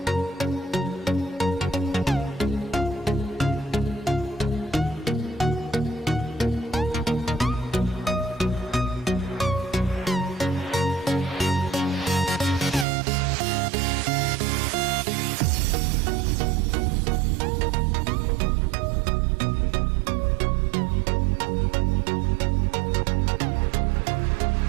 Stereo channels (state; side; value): drops out; left; at 12.9 s